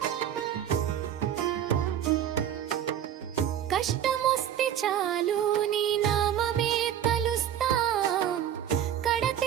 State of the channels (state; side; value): quieter; left; 10.1 dB